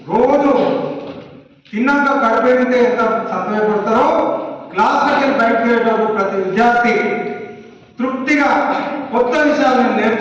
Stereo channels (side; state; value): both; identical; correlation 1.00